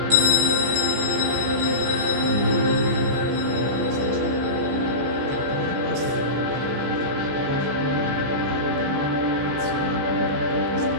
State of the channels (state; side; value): late; left; 15 ms